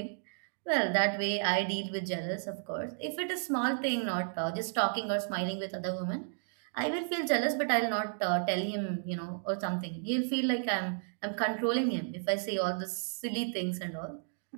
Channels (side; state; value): left; silent; digital silence